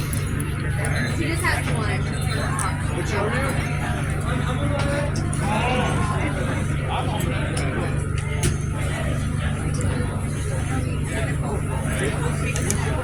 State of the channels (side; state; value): both; identical; correlation 1.00